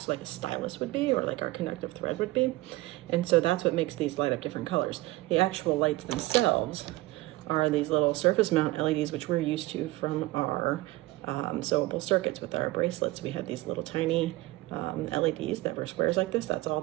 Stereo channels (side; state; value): left; quieter; 19.2 dB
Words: so like a stylus would be, or like our conductive thread would be. And so that's what makes these light up different colors. The actual lights themselves are these little surface mount LEDs, which we're used to from our sewable circuits with our bracelets. We have these little tiny LEDs that were squares like this. That's all